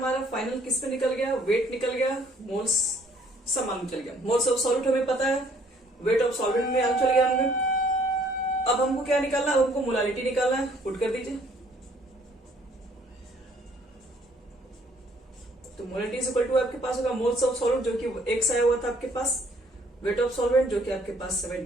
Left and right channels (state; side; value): normal; both; correlation 0.61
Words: फाइनल किस पे निकल गया, वेट निकल गया, मोल्स सब मालूम चल गया। मोल्स ऑफ सॉल्वेंट हमें पता है, वेट ऑफ सॉल्वेंट में मालूम चल गया हमें। अब हमको क्या निकालना है, हमको मोलालिटी निकालना है, पुट कर दीजिए। तो मोलालिटी इज इक्वल टू आपके पास होगा मोल्स ऑफ सॉल्वेंट, जो कि x आया हुआ था आपके पास, वेट ऑफ सॉल्वेंट जो कि आपके पास